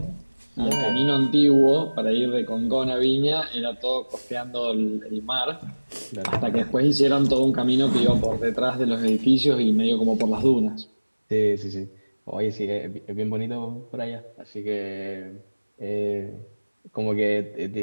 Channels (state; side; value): inverted; both; correlation -1.00